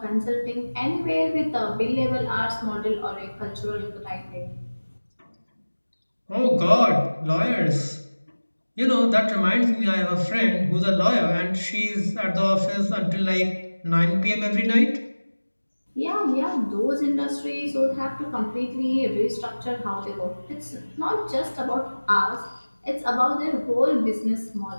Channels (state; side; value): inverted; both; correlation -1.00